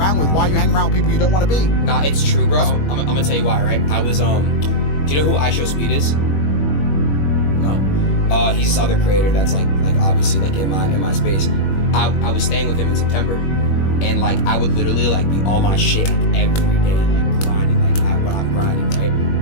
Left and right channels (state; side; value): late; right; 21 ms